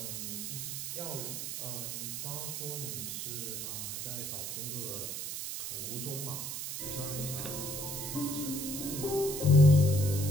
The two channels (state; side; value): noise; right; hiss, 5 dB below the sound